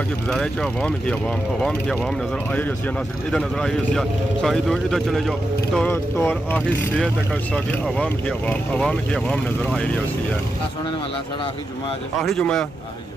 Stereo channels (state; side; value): normal; both; correlation 0.87